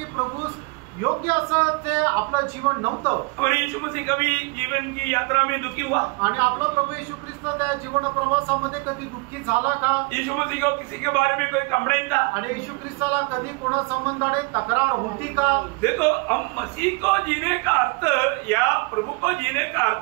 प्रभू योग्य असं ते आपलं जीवन नव्हतं। हमारे यीशु मसीह कभी जीवन की यात्रा में दुखी हुआ? आणि आपला प्रभू येशू ख्रिस्त त्या जीवन प्रवासामध्ये कधी दुःखी झाला का? यीशु मसीह को किसी के बारे में कोई कंप्लेंट था? आणि येशू ख्रिस्ताला कधी कोणा संबंधाने तक्रार होती का? देखो, हम मसीह को जीने का अर्थ या प्रभु को जीने का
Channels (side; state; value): left; quieter; 28.8 dB